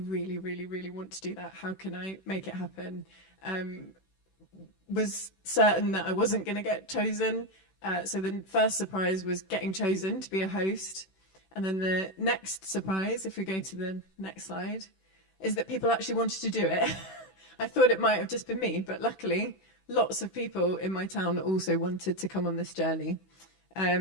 really, really want to do that. How can I make it happen? Was certain that I wasn't going to get chosen. So the first surprise was getting chosen to be a host. And then the next surprise, if we go to the next slide, is that people actually wanted to do it. I thought it might have just been me, but luckily lots of people in my town also wanted to come on this journey.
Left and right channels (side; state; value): right; late; 16 ms